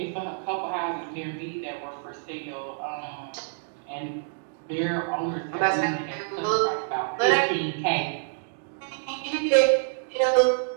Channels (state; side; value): silent; left; digital silence